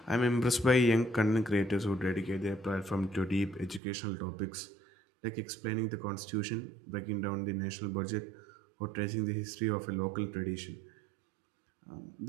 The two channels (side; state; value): left; drops out; at 3.8 s